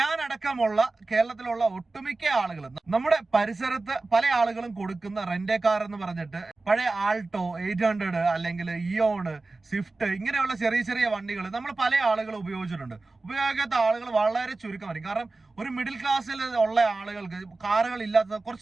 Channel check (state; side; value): quieter; left; 3.4 dB